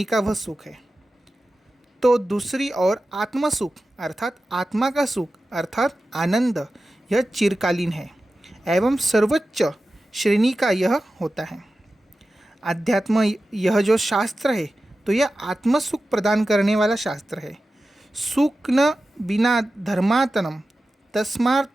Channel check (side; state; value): both; normal; correlation 0.94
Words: का वह सुख है। तो दूसरी ओर आत्म सुख अर्थात आत्मा का सुख अर्थात आनंद यह चिरकालीन है एवं सर्वोच्च श्रेणी का यह होता है। अध्यात्म यह जो शास्त्र है तो यह आत्म सुख प्रदान करने वाला शास्त्र है। सुख न बिना धर्मातनम